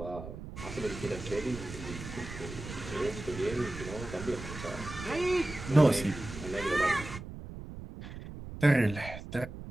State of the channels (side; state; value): right; noise; rumble, 11 dB below the sound